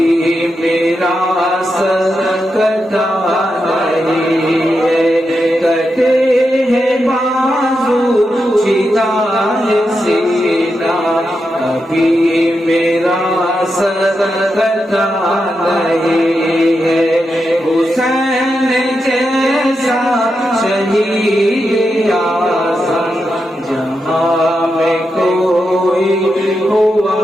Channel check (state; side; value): normal; both; correlation 0.87